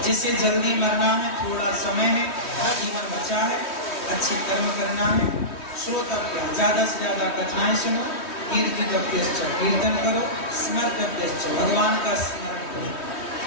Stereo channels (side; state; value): right; late; 3.1 ms